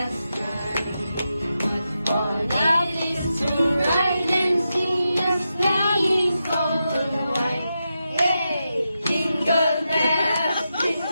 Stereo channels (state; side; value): inverted; both; correlation -0.88